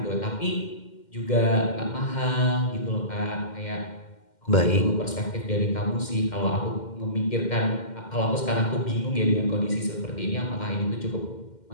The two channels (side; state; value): right; late; 2.1 ms